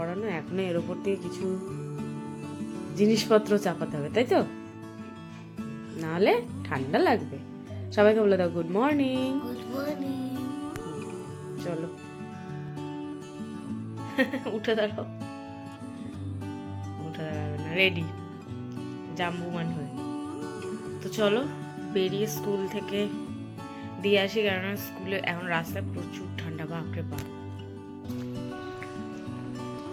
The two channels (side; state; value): both; identical; correlation 1.00